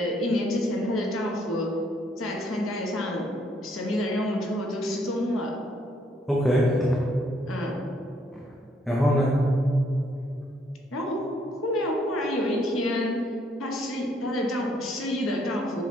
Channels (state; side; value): normal; both; correlation 0.69